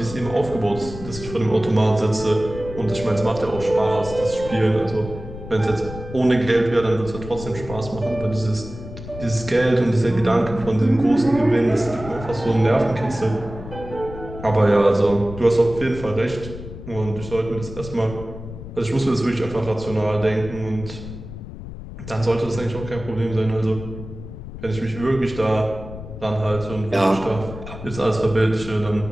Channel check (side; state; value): left; noise; rumble, 12 dB below the sound